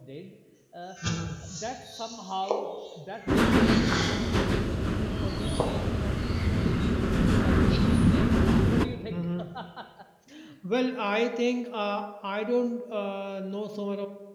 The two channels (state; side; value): identical; both; correlation 1.00